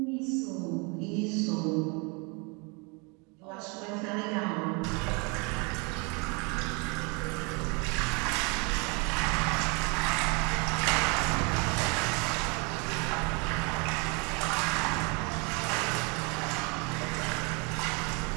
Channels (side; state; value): left; quieter; 31.2 dB